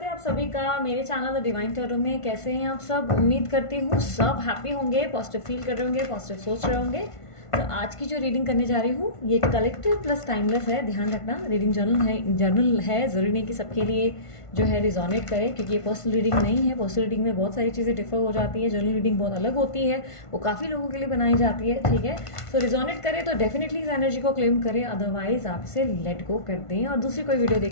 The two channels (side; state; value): right; late; 1.5 ms